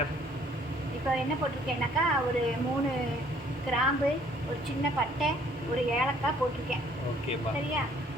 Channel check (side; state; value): both; normal; correlation 0.60